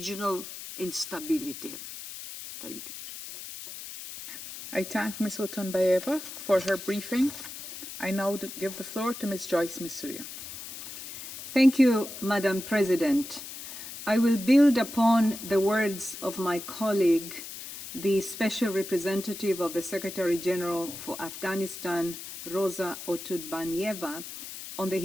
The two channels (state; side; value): noise; left; hiss, 11 dB below the sound